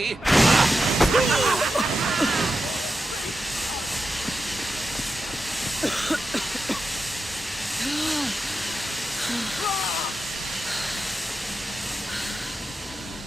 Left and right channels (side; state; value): both; normal; correlation 0.89